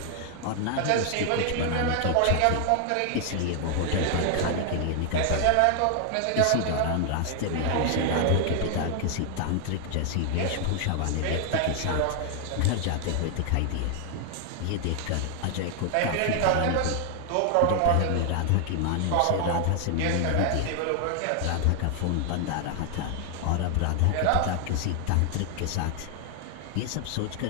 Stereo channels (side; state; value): both; different; correlation 0.00